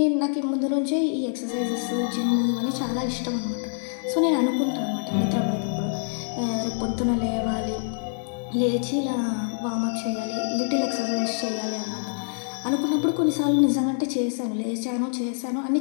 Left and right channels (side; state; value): right; silent; digital silence